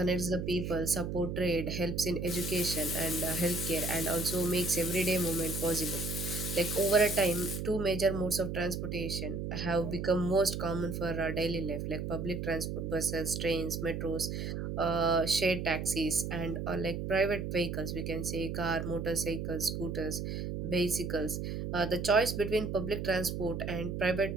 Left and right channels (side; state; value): right; noise; hum, 4 dB below the sound